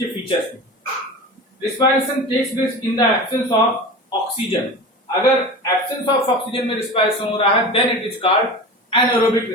फीचर्स भी। Respiration takes place in the absence of oxygen. अगर एब्सेंस ऑफ ऑक्सीजन में रेस्पिरेशन हो रहा है then it is called anaerobic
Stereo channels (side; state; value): both; normal; correlation 0.31